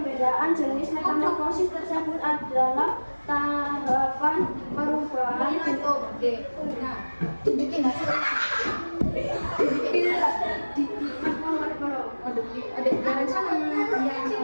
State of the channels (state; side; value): inverted; both; correlation -1.00